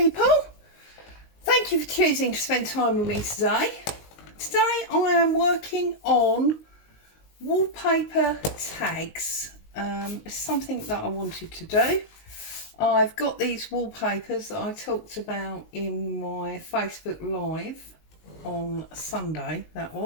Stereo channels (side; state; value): right; late; 19 ms